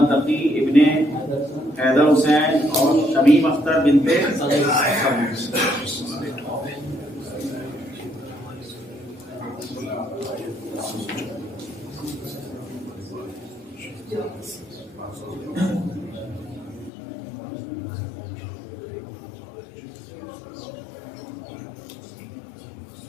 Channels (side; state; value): right; drops out; at 16.9 s